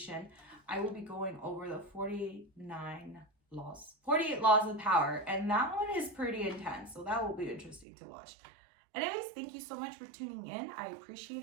I will be going over the 48 laws of power, and that one is pretty intense, so that will be interesting to watch. Anyways, thank you so much for tuning in. I appreciate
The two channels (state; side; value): drops out; left; at 7.9 s